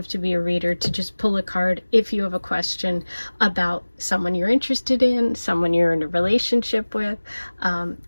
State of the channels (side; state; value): both; inverted; correlation -1.00